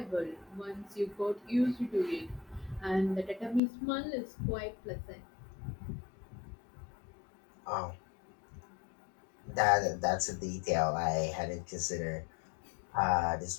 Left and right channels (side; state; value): right; drops out; at 3.6 s